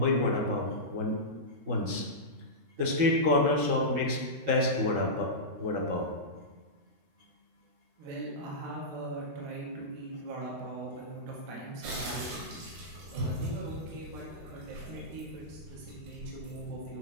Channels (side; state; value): left; late; 13 ms